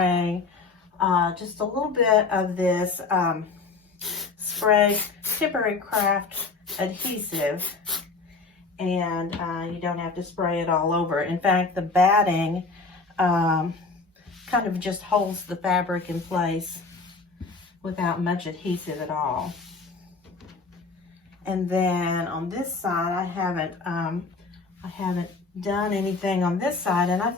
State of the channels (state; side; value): quieter; right; 4.1 dB